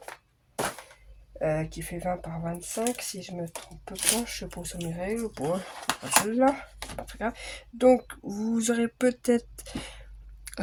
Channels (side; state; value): both; identical; correlation 1.00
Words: Qui fait 20 par 25, si je me trompe pas, je sais pas où sont mes règles. Bon, pas celle-là, pas très grave. Donc, vous aurez peut-être